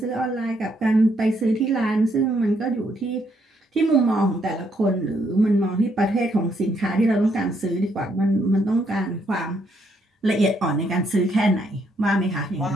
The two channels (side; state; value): both; normal; correlation 0.73